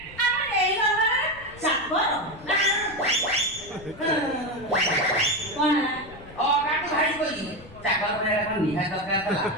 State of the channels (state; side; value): noise; left; rumble, 20 dB below the sound